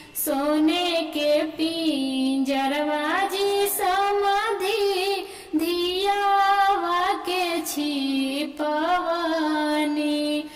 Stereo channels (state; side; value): identical; both; correlation 1.00